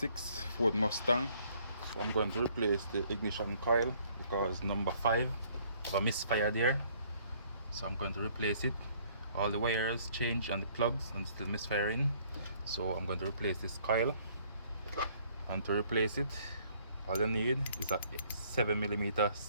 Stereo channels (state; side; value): inverted; both; correlation -0.62